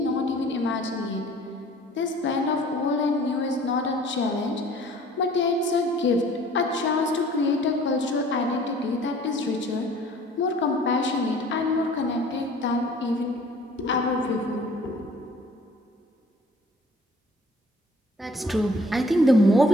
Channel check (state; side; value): normal; both; correlation 0.53